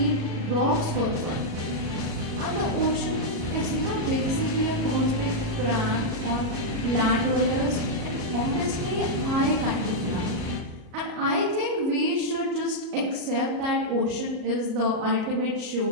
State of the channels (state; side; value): late; left; 37 ms